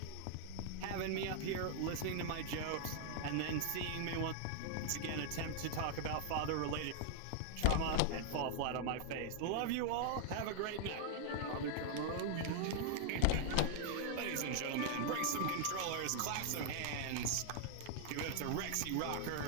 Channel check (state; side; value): different; both; correlation 0.00